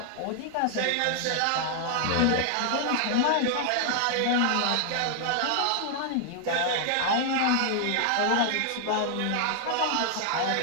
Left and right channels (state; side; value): different; both; correlation 0.00